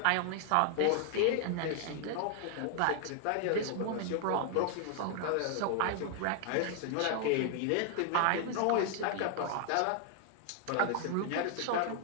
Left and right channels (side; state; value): both; different; correlation 0.00